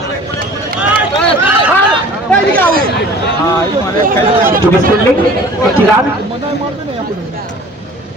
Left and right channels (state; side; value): normal; both; correlation 0.46